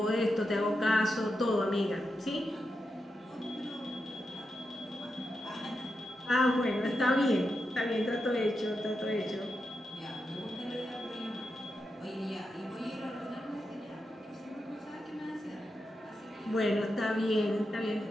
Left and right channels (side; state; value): both; normal; correlation 0.87